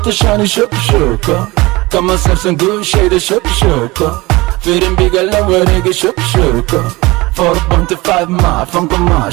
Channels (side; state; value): left; quieter; 21.8 dB